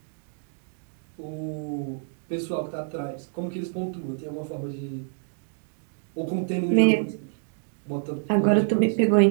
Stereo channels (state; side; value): silent; left; 60 dB below the other